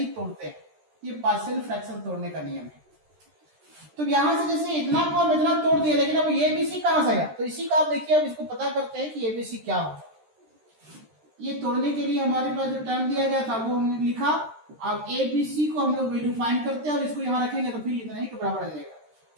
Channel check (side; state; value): left; late; 13 ms